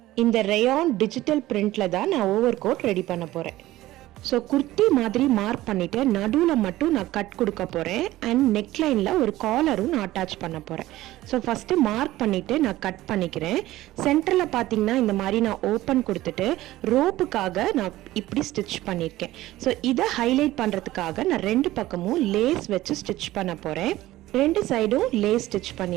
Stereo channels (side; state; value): left; quieter; 16.2 dB